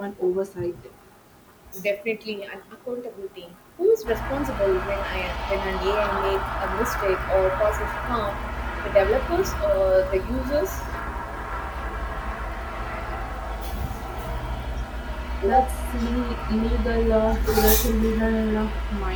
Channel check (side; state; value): both; identical; correlation 1.00